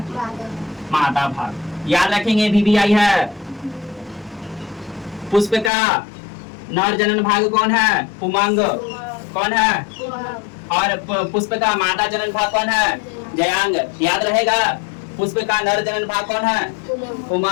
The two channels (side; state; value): right; drops out; at 5.7 s